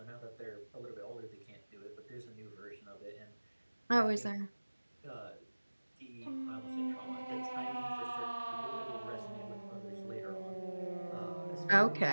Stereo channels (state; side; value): inverted; both; correlation -1.00